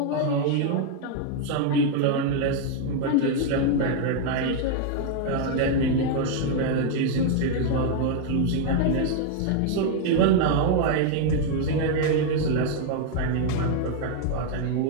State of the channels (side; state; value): both; different; correlation 0.00